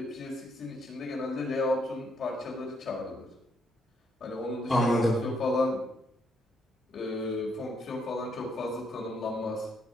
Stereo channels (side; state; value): both; normal; correlation 0.74